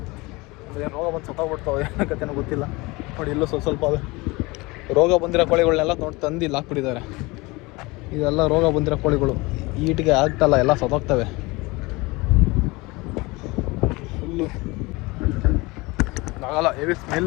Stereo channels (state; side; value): quieter; right; 23.6 dB